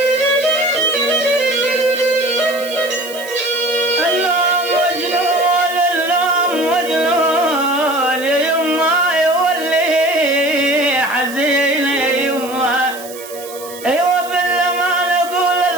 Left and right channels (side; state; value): right; noise; hiss, 15 dB below the sound